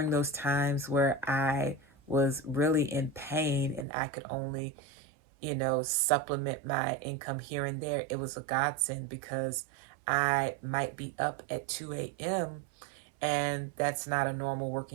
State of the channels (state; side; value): drops out; left; at 3.9 s